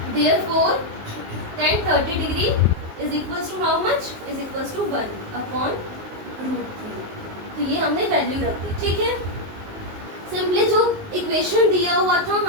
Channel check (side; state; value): left; late; 19 ms